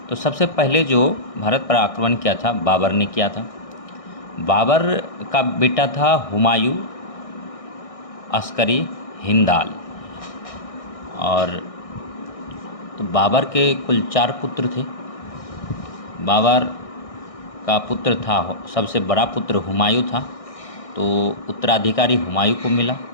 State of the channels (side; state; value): right; late; 1.6 ms